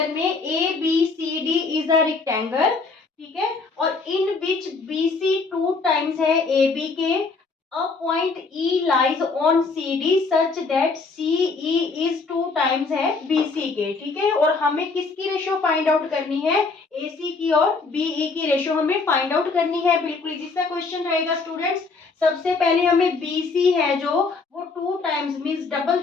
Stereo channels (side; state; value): right; quieter; 4.2 dB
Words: में A B C D is a rectangle, ठीक है, और इन विच बी सी 2 टाइम्स है ए बी के, a point E lies on C D such that C E is 2 times है B C के, ठीक है, और हमें किसकी रेशियो फाइंड आउट करनी है? ए सी की और बी ई की रेशियो हमें फाइंड आउट करनी है। बिल्कुल इजी सा क्वेश्चन रहेगा स्टूडेंट्स। सबसे पहले हमें BC है जो वो 2 टाइम्स मीन्स डबल